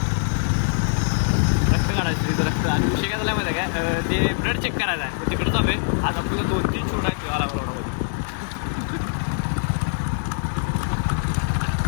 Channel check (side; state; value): right; silent; digital silence